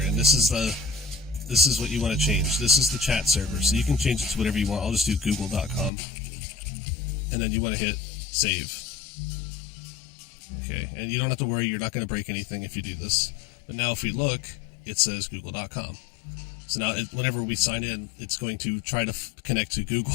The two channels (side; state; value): right; drops out; at 5.9 s